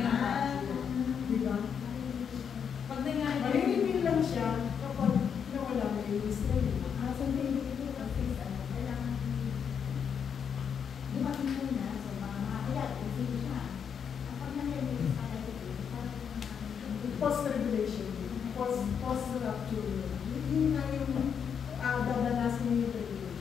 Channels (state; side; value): quieter; right; 7.3 dB